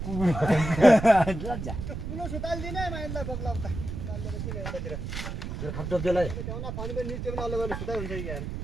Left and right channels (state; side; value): noise; right; rumble, 6 dB below the sound